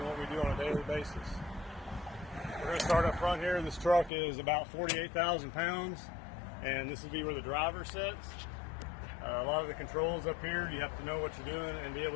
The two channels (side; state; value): right; drops out; at 4.1 s